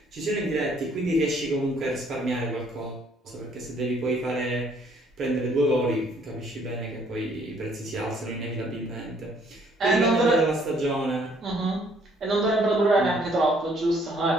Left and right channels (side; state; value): both; normal; correlation 0.63